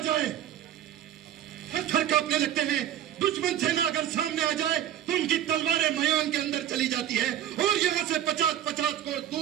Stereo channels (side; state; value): left; quieter; 11.3 dB